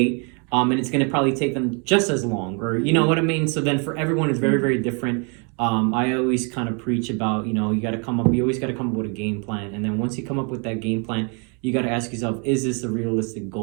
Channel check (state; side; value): quieter; left; 35.7 dB